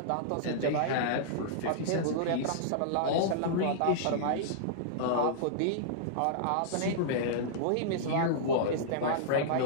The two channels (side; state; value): both; different; correlation -0.02